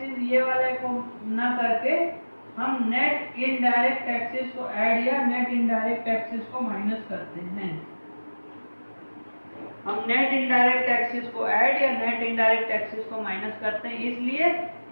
ये वाले को ना करके हम नेट इनडायरेक्ट टैक्सेस को ऐड या नेट इनडायरेक्ट टैक्सेस को माइनस करते हैं। हम नेट इनडायरेक्ट टैक्सेस को ऐड या नेट इनडायरेक्ट टैक्सेस को माइनस करते हैं, इसलिए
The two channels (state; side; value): inverted; both; correlation -1.00